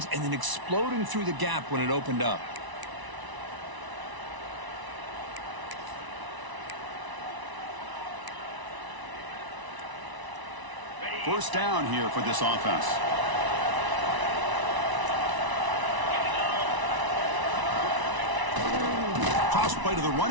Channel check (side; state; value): left; late; 1.0 ms